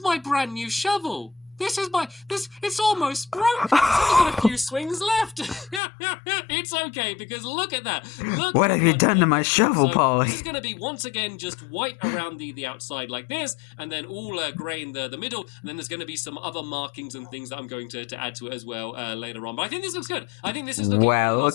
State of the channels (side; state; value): right; drops out; at 5.8 s